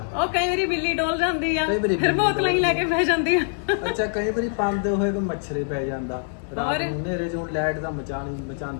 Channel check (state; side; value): silent; right; digital silence